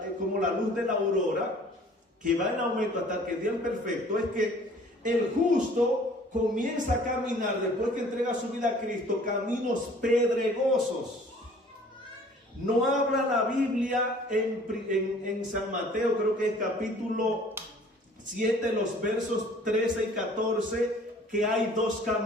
la luz de la aurora, que va en aumento hasta que el día es perfecto, es que el justo comienza a caminar, después que entrega su vida a Cristo, caminos pedregosos. No habla la Biblia en San Mateo, creo que es capítulo 7, los versos 13 y 14, que hay 2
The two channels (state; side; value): normal; both; correlation 0.52